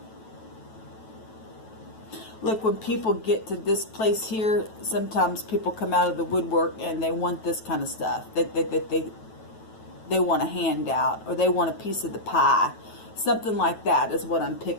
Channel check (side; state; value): right; late; 9.2 ms